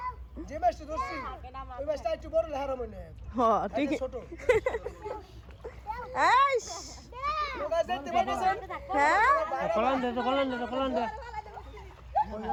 যে মাছটা ধরছি ওই মাছটা একটু বড় লেহারা মনে হয়। হ্যাঁ ঠিক ছোট। এইস ওটা দেখতে পাচ্ছেন? হ্যাঁ কলন দে তো কলন দে তো কলন দে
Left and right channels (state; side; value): identical; both; correlation 1.00